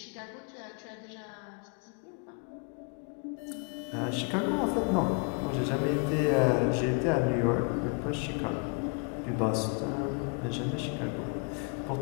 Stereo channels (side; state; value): right; quieter; 37.7 dB